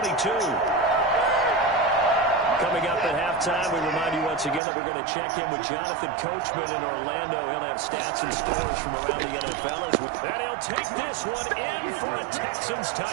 Coming up at halftime, we remind you once again that we're going to check in with Jonathan Coachman in Orlando. He'll have stats and scores from around the NFL. And he'll take this one in for a Texans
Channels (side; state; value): left; drops out; at 4.6 s